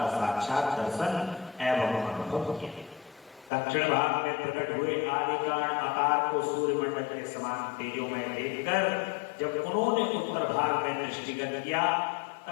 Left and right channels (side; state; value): right; drops out; at 3.5 s